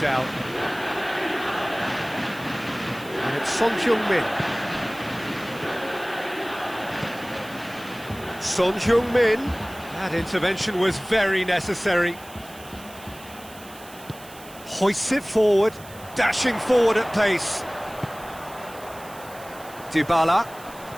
And it's Son Heung-min. Son Heung-min. That intervention was very necessary. Hoists it forward, dashing forward at pace. Dybala.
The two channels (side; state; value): right; noise; hiss, 19 dB below the sound